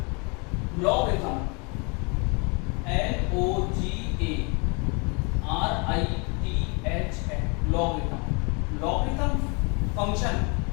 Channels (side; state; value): right; quieter; 32.3 dB